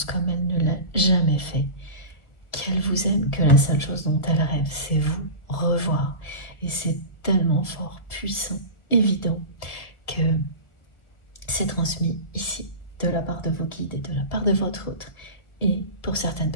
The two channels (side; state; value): right; late; 1.5 ms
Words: comme elle ne l'a jamais fait, qu'elle vous aime, que la seule chose dont elle rêve, c'est vous revoir. Et c'est tellement fort, puissant, évident, que c'est transmis ici, de la part de vos guides et de la part de votre autre. Et pour certaines